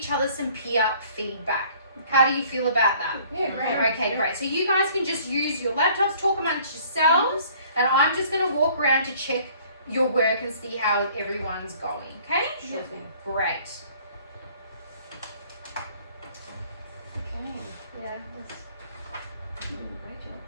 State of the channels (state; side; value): inverted; both; correlation -0.55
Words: other some peer feedback. How do you feel about that? Yeah, great. Okay, great. So you guys can just use your laptops, talk amongst yourselves, and I'm just going to walk around to check your work and see how everyone's going, okay? Sure thing. Great. Okay. Yeah. Great job.